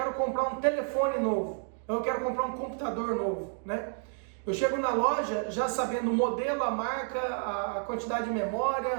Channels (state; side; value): silent; left; 55 dB below the other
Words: comprar um telefone novo, eu quero comprar um computador novo, né? Eu chego na loja já sabendo o modelo, a marca, a quantidade de